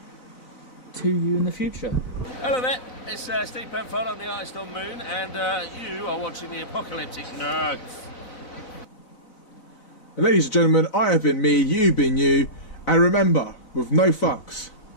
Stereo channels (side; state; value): right; late; 4.0 ms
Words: to you in the future. Hello there, it's Steve Penfold on the Artist on Moon, and you are watching the Apocalyptic Nerds. And ladies and gentlemen, I have been me, you've been you, and remember, with no fucks